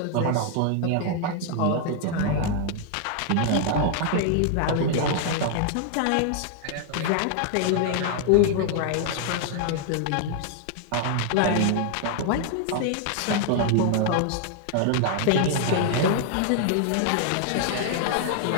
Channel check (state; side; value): different; both; correlation 0.00